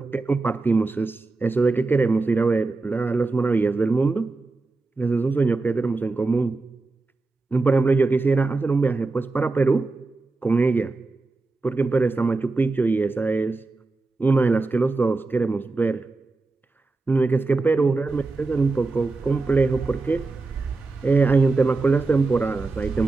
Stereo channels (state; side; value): quieter; left; 3.6 dB